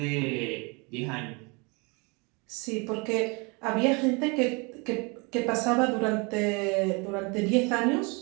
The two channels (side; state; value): left; quieter; 29.9 dB